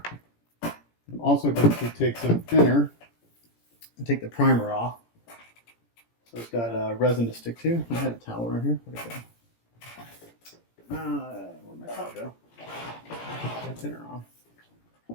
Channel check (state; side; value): late; right; 17 ms